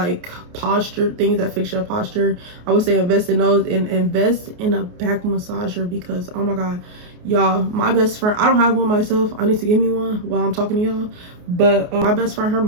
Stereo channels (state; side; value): late; left; 28 ms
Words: posture, things that fix your posture. I would say invest in those, and invest in a back massager, because oh my god, y'all, my best friend, I don't have one myself, I need to get me one while I'm talking to y'all, but my best friend, her